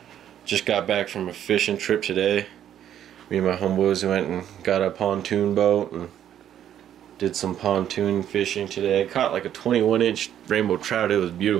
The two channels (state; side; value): quieter; left; 10.5 dB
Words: Just got back from a fishing trip today. Me and my homeboys went and got a pontoon boat and did some pontoon fishing today. I caught like a 21-inch rainbow trout. It was